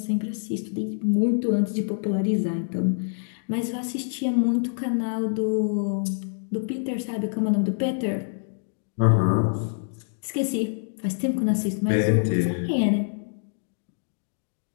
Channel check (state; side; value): silent; right; digital silence